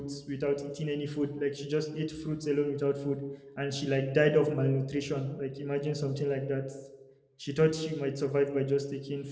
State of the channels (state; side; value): identical; both; correlation 1.00